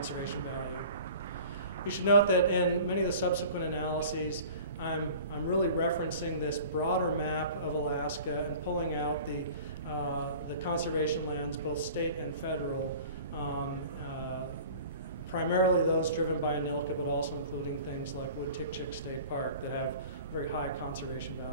value. You should note that in many of the subsequent analyses, I'm really referencing this broader map of Alaska and pulling out the conservation lands, both state and federal, primarily those driven by ANILCA, but also including things like Wood-Tikchik State Park that have very high conservation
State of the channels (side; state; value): both; inverted; correlation -0.43